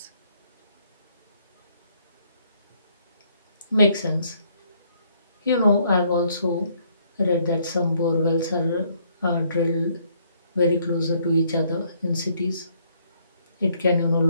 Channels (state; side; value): inverted; both; correlation -0.67